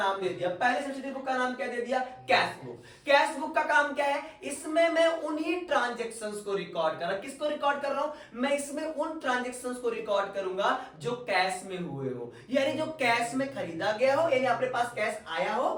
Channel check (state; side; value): identical; both; correlation 1.00